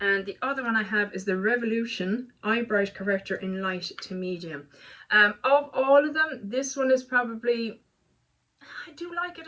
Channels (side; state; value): both; identical; correlation 1.00